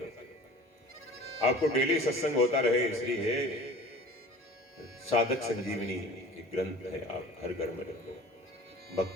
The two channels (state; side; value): normal; both; correlation 0.43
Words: आपको डेली सत्संग होता रहे, इसलिए साधक संजीवनी एक ग्रंथ है, आप हर घर में रखो।